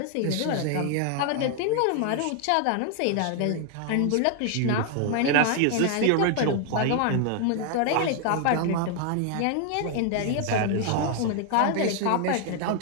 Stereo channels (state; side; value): different; both; correlation 0.00